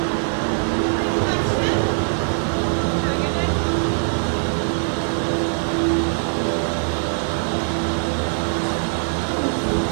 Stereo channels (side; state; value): left; silent; digital silence